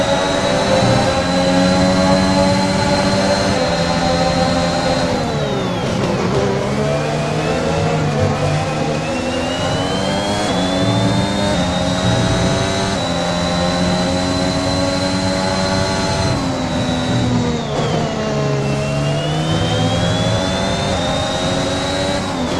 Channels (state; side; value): identical; both; correlation 1.00